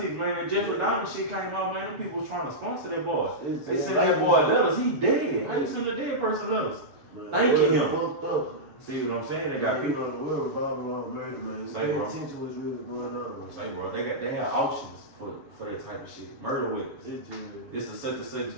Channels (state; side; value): late; left; 7.4 ms